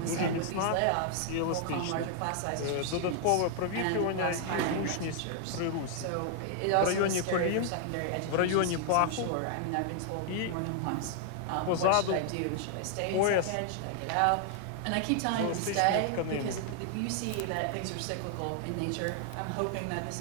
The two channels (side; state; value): both; different; correlation 0.00